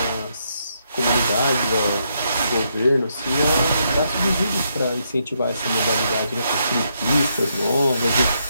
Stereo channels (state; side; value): inverted; both; correlation -0.77